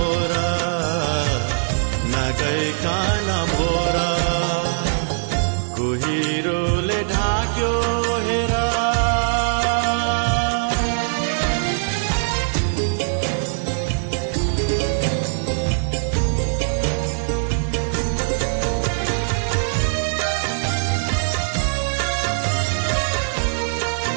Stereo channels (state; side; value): silent; left; digital silence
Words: नगइकन भोर कुहिरोले ढाक्यो हेर